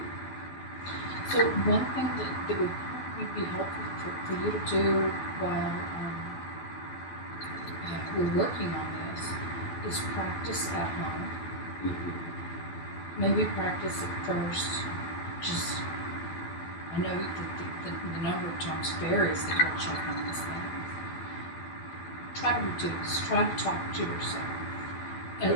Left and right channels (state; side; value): late; right; 12 ms